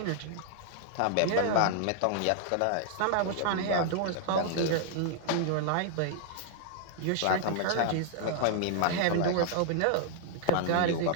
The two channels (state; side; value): different; both; correlation -0.01